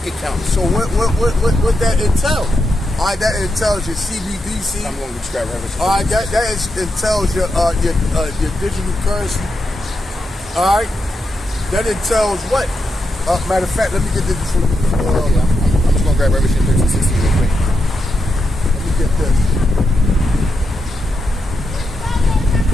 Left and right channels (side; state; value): both; normal; correlation 0.85